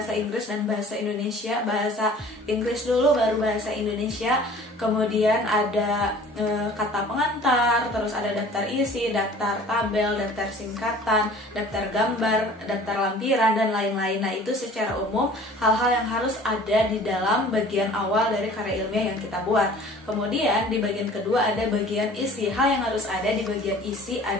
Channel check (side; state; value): both; normal; correlation 0.47